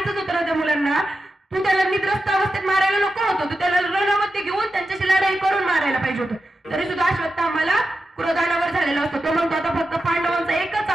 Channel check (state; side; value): normal; both; correlation 0.90